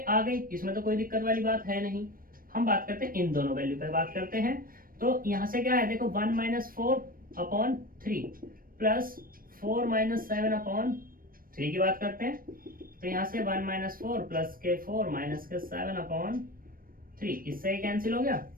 गई, इसमें तो कोई दिक्कत वाली बात है नहीं। हम बात करते हैं इन दोनों वैल्यू पे बात करते हैं। तो यहाँ से क्या है, देखो 1 minus 4 upon 3 plus 4 minus 7 upon 3 की बात करते हैं। तो यहाँ से 1 माइनस 4 प्लस के 4 माइनस के 7 अपॉन 3, इससे ही कैंसिल हो गया।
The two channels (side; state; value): left; late; 0.41 ms